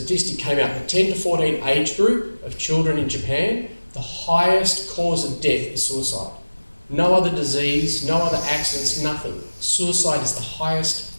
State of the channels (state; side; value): inverted; both; correlation -1.00